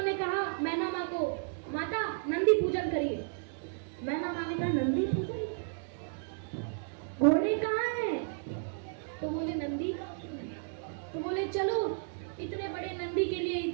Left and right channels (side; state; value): left; silent; digital silence